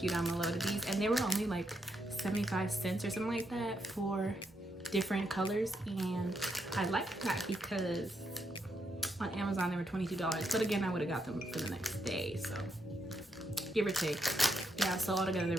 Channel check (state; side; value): normal; both; correlation 0.79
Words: you down below to these. And they were only like 75 cents or something like that for different colors, and I like that because on Amazon they were $22, but again I would have got them for the next day, so give or take. Yeah, so altogether there